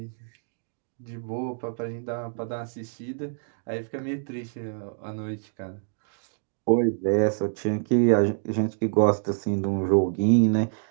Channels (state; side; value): silent; left; digital silence